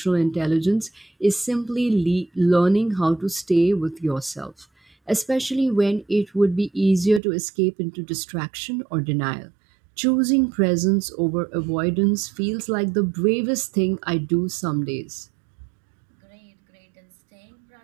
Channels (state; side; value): drops out; left; at 7.2 s